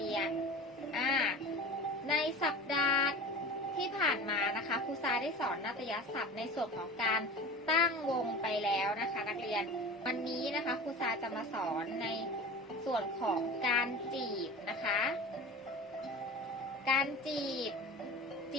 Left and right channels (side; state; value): both; normal; correlation 0.35